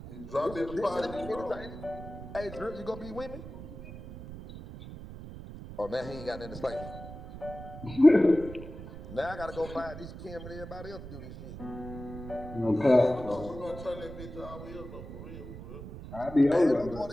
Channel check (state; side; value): noise; right; rumble, 12 dB below the sound